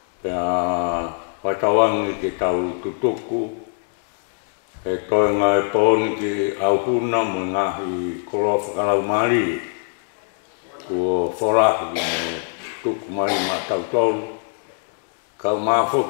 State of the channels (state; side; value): silent; right; 64 dB below the other